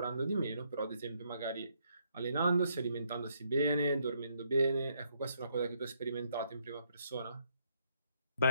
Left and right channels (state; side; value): inverted; both; correlation -0.72